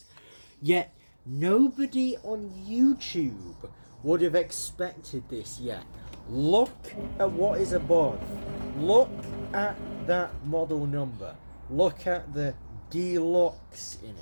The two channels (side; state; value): both; inverted; correlation -1.00